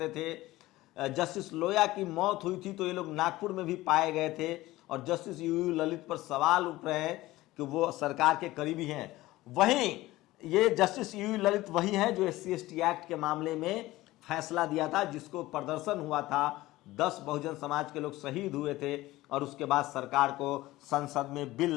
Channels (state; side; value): quieter; right; 17.8 dB